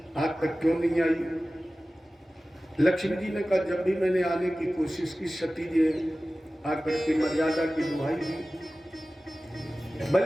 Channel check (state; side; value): normal; both; correlation 0.96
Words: आज तक क्यों नहीं आई? लक्ष्मी जी ने कहा, जब भी मैंने आने की कोशिश की, सती जी आकर के मर्यादा की दुहाई दी।